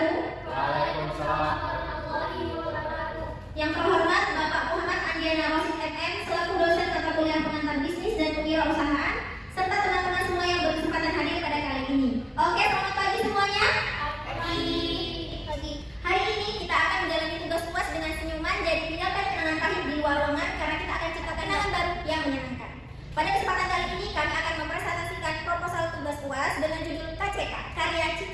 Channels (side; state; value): both; identical; correlation 1.00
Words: Waalaikumsalam. Yang terhormat Bapak Muhammad Andiana Rosid MM selaku dosen mata kuliah pengantar bisnis dan kewirausahaan serta teman-teman semua yang berkesempatan hadir pada kali ini. Oke, selamat pagi semuanya. Pagi. Hari ini kita akan menjalani tugas UAS dengan senyuman, jadi tinggalkan kenangan pahit di luar ruangan karena kita akan ciptakan kenangan baru yang menyenangkan. Pada kesempatan kali ini kami akan mempresentasikan proposal tugas UAS dengan judul KCK, Karya